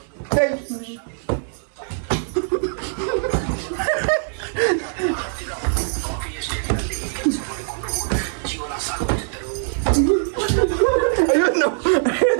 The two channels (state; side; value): silent; left; digital silence